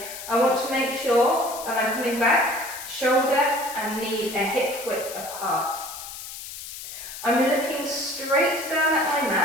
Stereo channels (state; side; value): noise; left; hiss, 11 dB below the sound